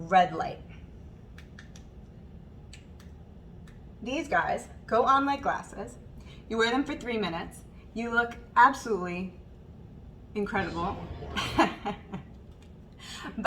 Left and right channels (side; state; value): both; identical; correlation 1.00